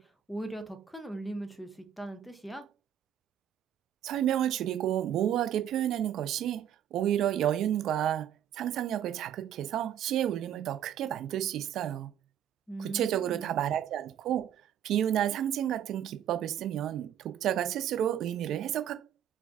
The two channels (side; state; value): left; quieter; 10.1 dB